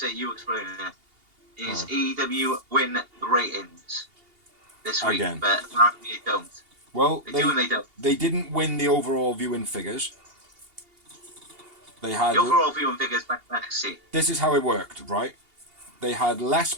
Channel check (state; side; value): late; left; 2.8 ms